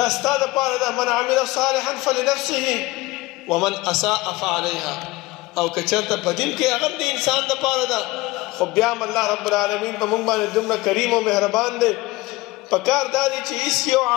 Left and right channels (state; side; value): quieter; right; 20.8 dB